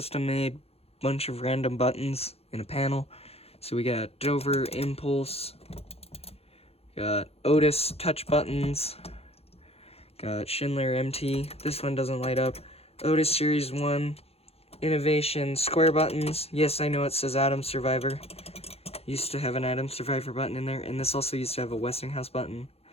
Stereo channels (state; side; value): late; right; 0.29 ms